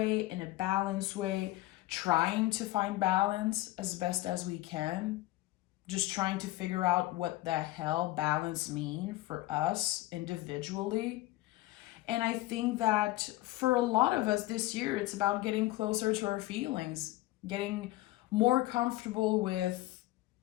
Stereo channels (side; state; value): right; quieter; 17.7 dB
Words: in a balanced way, trying to find balance as best as we can, just trying to figure out what the hell balance mean for us individually. And I think that for a lot of us this year, it's about getting closer to our feelings, getting more comfortable with